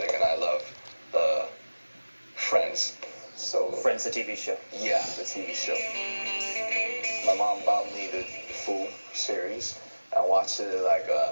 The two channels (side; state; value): both; inverted; correlation -1.00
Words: and I love the Friends. So Friends, the TV show. Yeah, the TV show. My mom bought me the full series. I watched it like